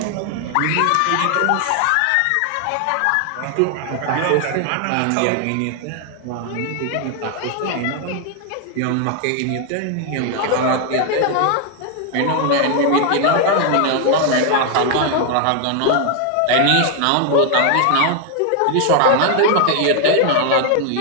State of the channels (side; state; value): both; different; correlation 0.00